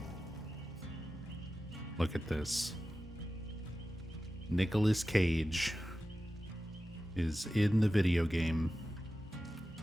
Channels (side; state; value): both; normal; correlation 0.94